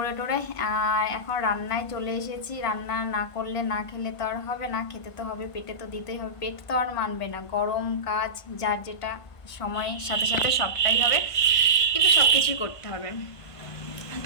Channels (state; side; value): late; right; 1.5 ms